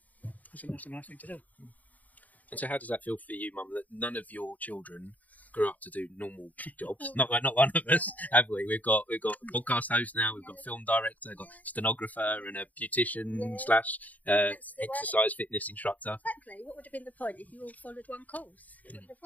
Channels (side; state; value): right; late; 0.077 ms